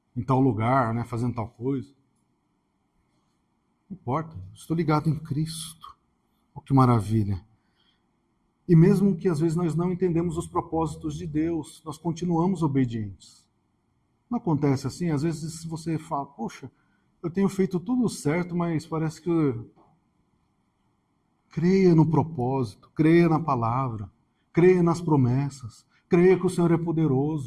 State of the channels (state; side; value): identical; both; correlation 1.00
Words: em tal lugar, né, fazendo tal coisa. Não importa, estou ligado em Cristo. Oh, que maravilha. E mesmo que às vezes nós não entendemos os propósitos de Deus, nós continuamos obedientes. Não acontece assim? Às vezes você fala, poxa, eu tenho feito tudo certo, mas parece que creia no propósito, creia na palavra, creia nas promessas, creia que o Senhor é